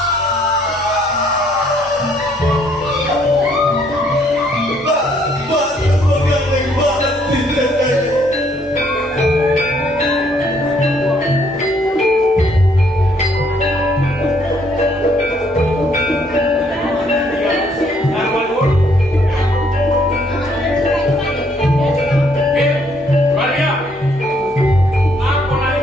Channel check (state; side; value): normal; both; correlation 0.67